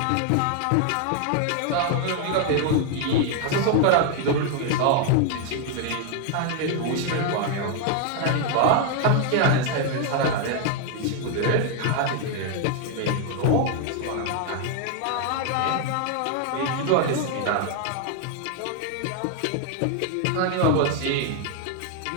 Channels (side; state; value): both; different; correlation 0.00